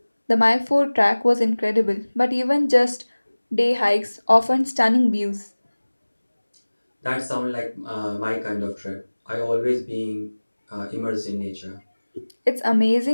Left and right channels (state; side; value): inverted; both; correlation -1.00